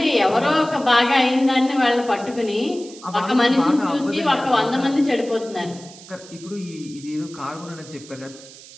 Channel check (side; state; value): right; noise; hiss, 19 dB below the sound